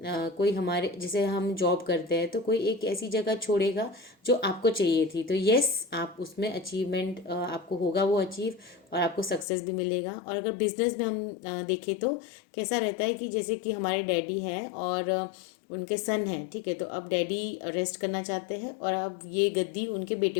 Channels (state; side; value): drops out; right; at 9.5 s